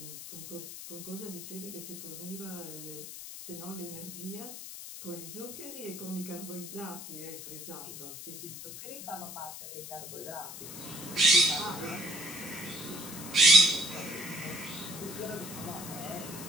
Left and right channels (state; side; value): noise; left; hiss, 10 dB below the sound